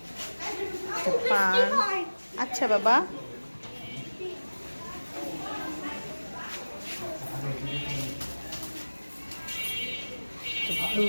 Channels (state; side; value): inverted; both; correlation -1.00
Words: পান আচ্ছা বাবা